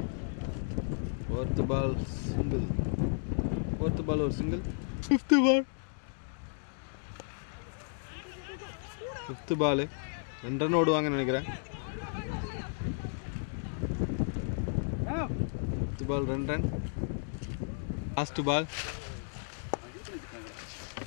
4th பால் சிங்கிள். 4th பால் ஒரு சிங்கிள். 5th பால். 5th பால் 2 ரன் ஓடுவாங்கன்னு நினைக்கிறேன். 5th ball 2 run. Last ball.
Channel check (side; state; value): right; silent; digital silence